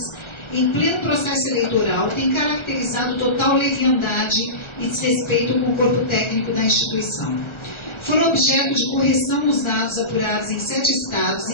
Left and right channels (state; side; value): late; right; 1.4 ms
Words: em pleno processo eleitoral têm caracterizado total leviandade e desrespeito com o corpo técnico da instituição. Foram objeto de correção nos dados apurados em 7 estados